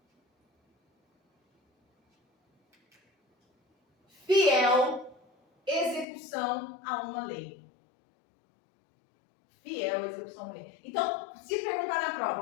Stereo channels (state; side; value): drops out; right; at 6.1 s